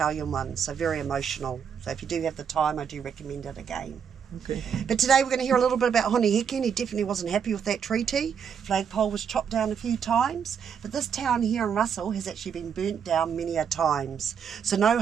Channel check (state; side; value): quieter; left; 7.4 dB